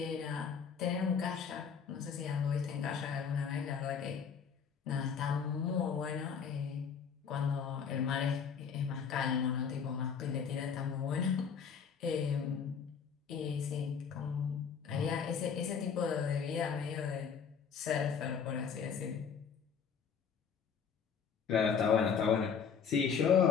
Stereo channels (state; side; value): quieter; right; 6.7 dB